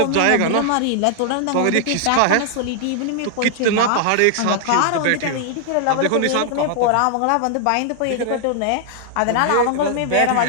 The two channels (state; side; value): different; both; correlation -0.01